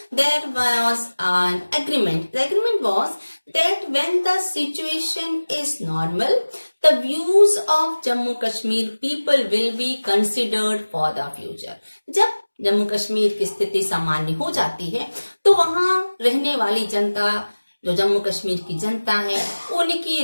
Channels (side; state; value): both; inverted; correlation -1.00